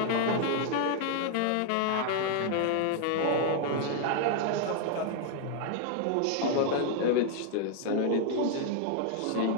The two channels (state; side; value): different; both; correlation 0.00